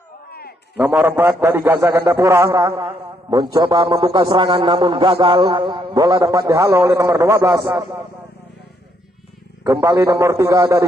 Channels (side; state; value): both; normal; correlation 0.73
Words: Nomor 4 dari Gaza Gandapura mencoba membuka serangan namun gagal. Bola dapat dihalau oleh nomor 12. Kembali nomor 3